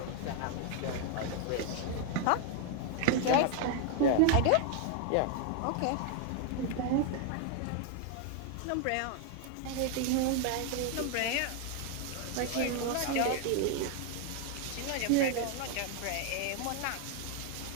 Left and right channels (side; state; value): both; different; correlation 0.00